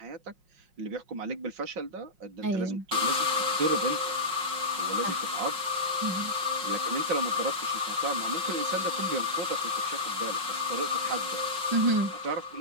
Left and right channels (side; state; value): left; late; 5.5 ms